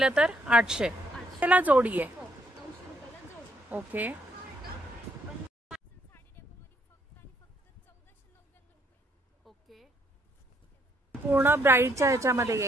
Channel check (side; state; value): both; normal; correlation 0.71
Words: तर 800 ला जोडी आहे. 900 रुपयाला जोडी. ओके. ओके. पूर्ण ब्राईडच्या ह्याच्यामध्ये